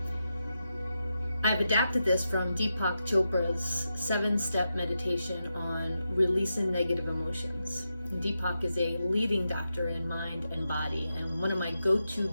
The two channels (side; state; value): both; inverted; correlation -0.88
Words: I've adapted this from Deepak Chopra's 7-step meditation on releasing negative emotions. Deepak is a leading doctor in mind and body, and one of my go-to